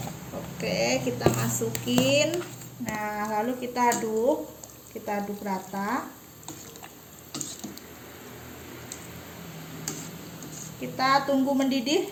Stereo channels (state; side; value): identical; both; correlation 1.00